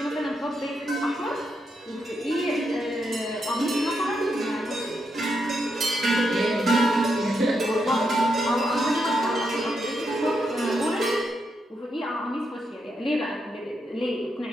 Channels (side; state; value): both; normal; correlation 0.82